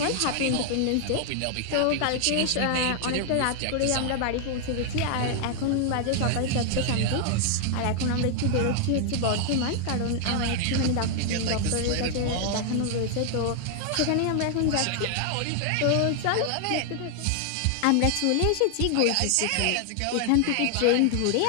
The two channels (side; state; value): both; different; correlation 0.00